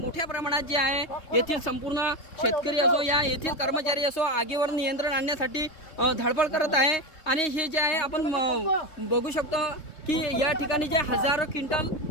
प्रमाणात जे आहे येथील संपूर्ण शेतकरी असो या येथील कर्मचारी असो आगीवर नियंत्रण आणण्यासाठी धडपड करत आहे। आणि हे जे आहे आपण बघू शकतो की या ठिकाणी जे हजारो क्विंटल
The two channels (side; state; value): right; late; 3.7 ms